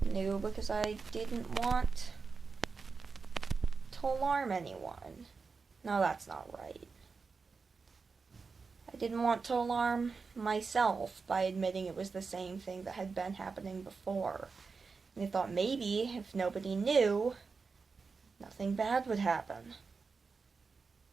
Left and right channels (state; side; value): quieter; left; 4.7 dB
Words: new because I didn't want to alarm anyone. No, that's not right. I didn't want to alarm myself by admitting it was the same thing that had been happening before. And I thought maybe if nobody knew, nothing bad would happen.